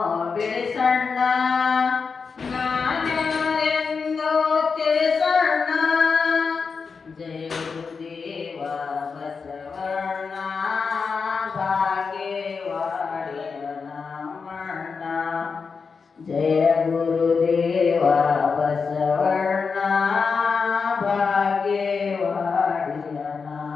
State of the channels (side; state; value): right; quieter; 5.2 dB